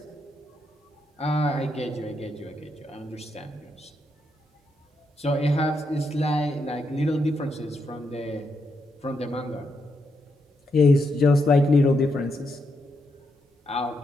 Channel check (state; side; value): normal; both; correlation 0.81